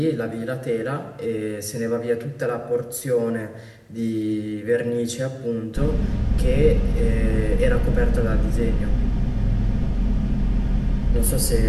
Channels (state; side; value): identical; both; correlation 1.00